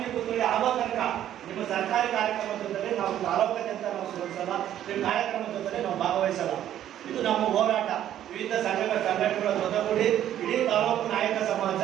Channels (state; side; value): quieter; left; 11.4 dB